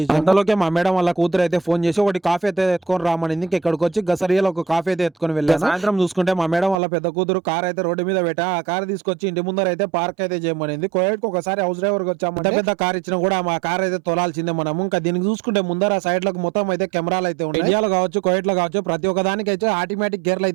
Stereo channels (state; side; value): drops out; left; at 6.8 s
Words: అంతలోకే మా మేడం వాళ్ళ కూతురు అయితే ఫోన్ చేసి ఒకటి కాఫీ అయితే ఎత్తుకొని రామనింది. ఇంకా ఇక్కడికి వచ్చి గసరియాలో ఒక కాఫీ అయితే ఎత్తుకొని వెళ్ళాను. సాయంత్రం చూసుకుంటే మా మేడం వాళ్ళ పెద్ద కూతురు కార్ అయితే రోడ్డు మీద పెట్టా. ఆ కార్ తీసుకొచ్చి ఇంటి ముందర అయితే పార్క్ అయితే చేయమనింది. కోయట్కి ఒకసారి హౌస్ డ్రైవర్ వచ్చామంటే పెద్ద కార్ ఇచ్చినా కూడా మా కార్ అయితే తోలాల్సిందే మనము. ఇంకా దీనికి చూసుకుంటే ముందర సైడ్ లకు మొత్తం అయితే కెమెరాలు అయితే ఉన్నాయి. ఇండియాలో కావచ్చు, కోయట్ లో కావచ్చు, ప్రతి ఒక్క దానికి అయితే ఆటోమేటిక్ గేర్లు